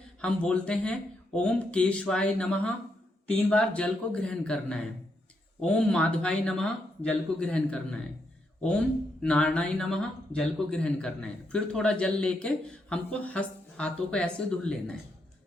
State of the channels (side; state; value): both; normal; correlation 0.80